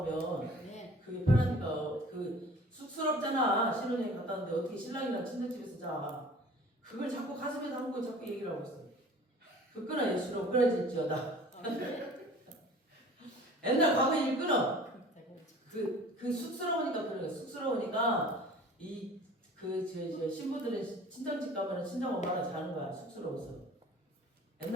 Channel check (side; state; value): both; normal; correlation 0.46